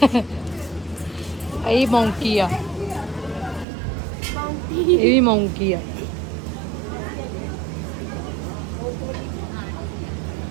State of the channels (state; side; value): drops out; left; at 3.7 s